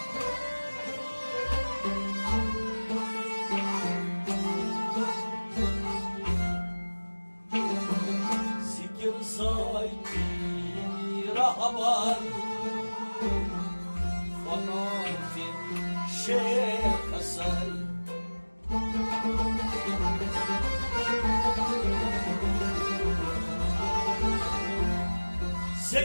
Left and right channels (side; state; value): both; inverted; correlation -1.00